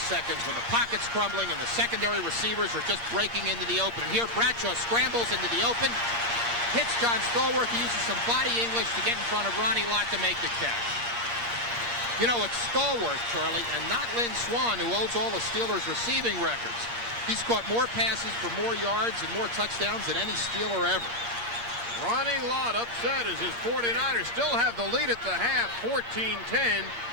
when the pocket's crumbling and the secondary receivers are just breaking into the open. And here Bradshaw scrambles into the open, hits John Stallworth. He uses some body English to get in front of Ronnie Lott to make the catch. You know, it's Stallworth, Charlie, and not Lynn Swann, who holds all the Steelers' receiving records. He's caught more passes for more yards and more touchdowns than any Steeler ever. Ronnie Lott upset as his 49ers still have the lead at the half, 14-10.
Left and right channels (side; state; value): left; late; 8.5 ms